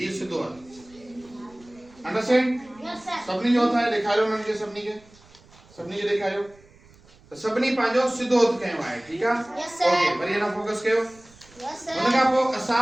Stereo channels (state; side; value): noise; right; rumble, 27 dB below the sound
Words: सीधो हथ। अंडरस्टैंड? सभी जो हथ है ॾेखारियो उन्हनि खे, सभिनी खे ॾेखारियो। तो सभिनी पंहिंजो सीधो हथ कयो आहे, ठीकु आहे? ओके, वरी अञा फोकस कयो। हुन खां पोइ